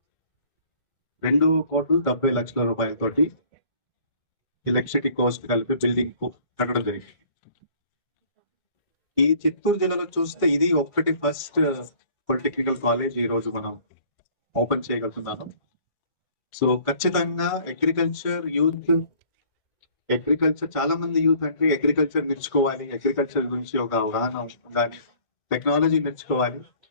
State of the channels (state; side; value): late; right; 1.5 ms